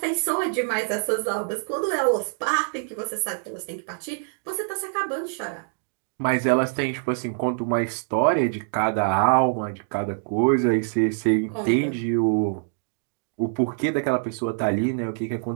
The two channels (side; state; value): left; silent; digital silence